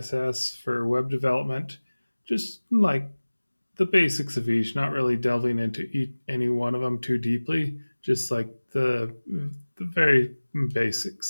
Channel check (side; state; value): both; inverted; correlation -1.00